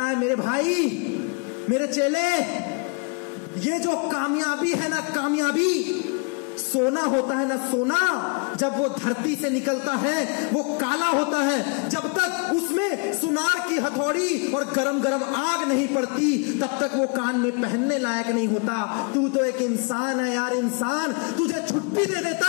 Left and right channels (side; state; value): right; quieter; 34.4 dB